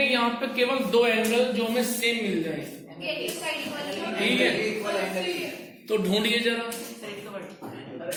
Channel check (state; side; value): identical; both; correlation 1.00